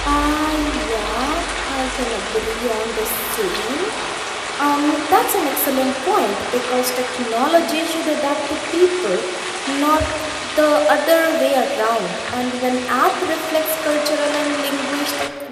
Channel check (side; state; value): both; identical; correlation 1.00